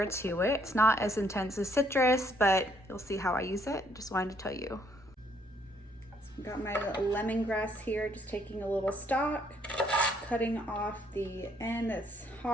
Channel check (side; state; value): both; normal; correlation 0.68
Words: to it. It's not as intense as citrus, but you'll see how I use it. Just wanted to tell you. So I've got my lemongrass here, just taking a little stalk, cutting off the end that's